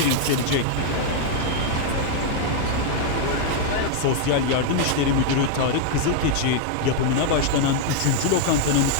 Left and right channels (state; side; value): different; both; correlation 0.00